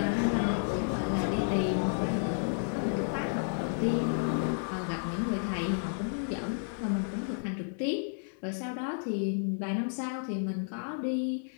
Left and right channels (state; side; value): silent; right; digital silence